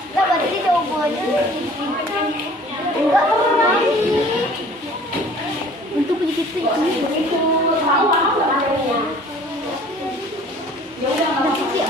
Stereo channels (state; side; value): normal; both; correlation 0.50